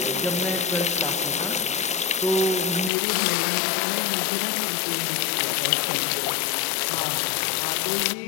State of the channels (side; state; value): right; drops out; at 2.9 s